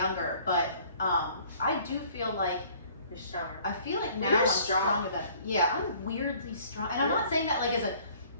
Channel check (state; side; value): inverted; both; correlation -0.55